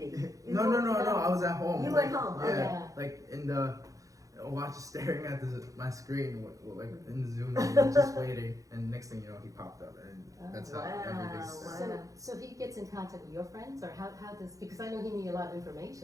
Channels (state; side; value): late; left; 0.16 ms